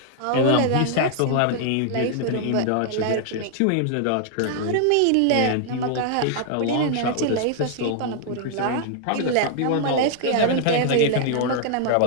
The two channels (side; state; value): both; different; correlation -0.01